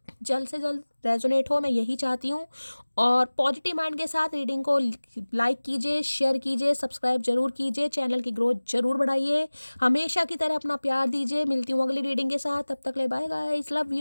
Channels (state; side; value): inverted; both; correlation -1.00